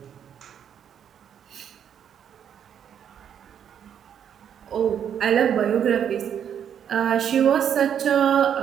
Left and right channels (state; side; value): quieter; left; 8.8 dB